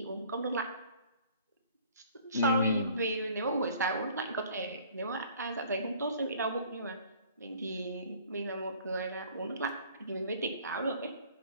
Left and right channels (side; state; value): both; inverted; correlation -0.54